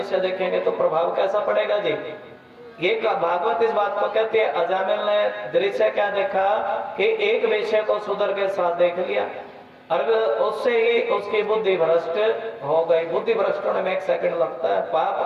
देखेंगे तो प्रभाव कैसा पड़ेगा जी? ये भागवत इस बात को कहते हैं। अजामिल ने दृश्य क्या देखा कि एक विषय को सुधर के साथ देख लिया, और उससे ही उसकी बुद्धि भ्रष्ट हो गई। बुद्धि भ्रष्ट होने में 1 सेकंड लगता है,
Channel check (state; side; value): identical; both; correlation 1.00